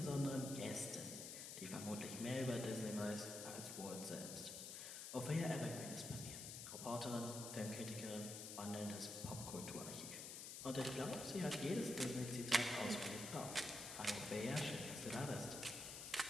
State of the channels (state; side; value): noise; left; hiss, 7 dB below the sound